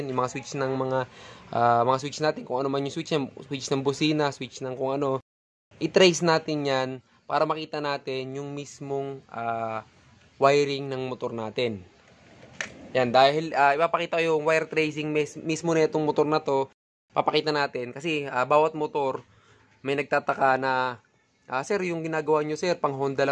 yung mga switch ng mga switch natin, kung ano man yung switch ng busina, switch ng kung ano. I-trace natin yan para makita natin yung mismong wiring ng motor natin. Yan, dahil ipapakita ko yung wire tracing mismo na itong motor na to, papakita natin. Kasi bawat motor, may nagtataka na, sir, yung ginagawa nyo, sir, pang Honda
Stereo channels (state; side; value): identical; both; correlation 1.00